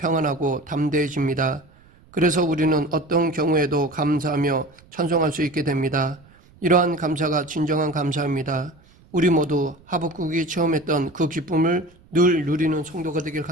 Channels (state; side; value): noise; right; rumble, 28 dB below the sound